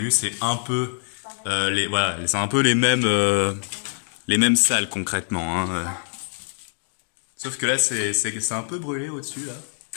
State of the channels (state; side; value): silent; right; digital silence